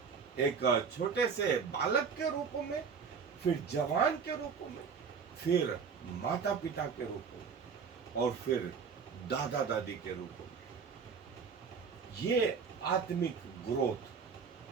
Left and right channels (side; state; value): left; quieter; 6.0 dB